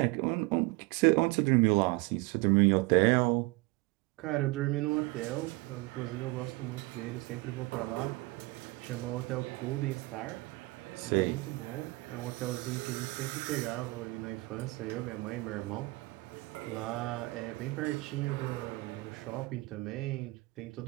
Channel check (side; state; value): left; quieter; 23.2 dB